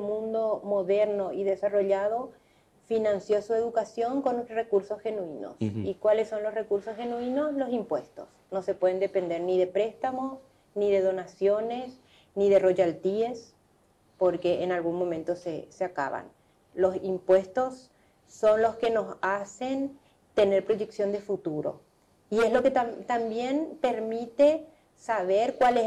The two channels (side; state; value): both; identical; correlation 1.00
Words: moderno y desarrollado financió su educación con recursos genuinos. ¿Y cuáles son los recursos genuinos? Los impuestos. No se pueden depender ni de préstamos, ni de donaciones, ni de royalties, porque en algún momento se acaban. Los impuestos son los que nos hacen tener proyección de futuro. Y es lo que también permite saber cuál es